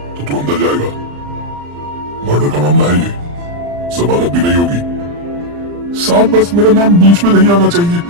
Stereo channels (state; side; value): late; left; 35 ms